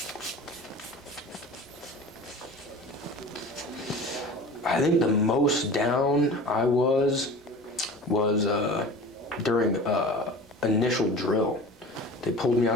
I think the most down I was during initial drill. They pulled me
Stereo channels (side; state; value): both; normal; correlation 0.38